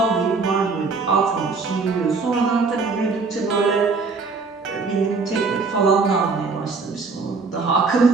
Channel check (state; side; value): quieter; left; 4.4 dB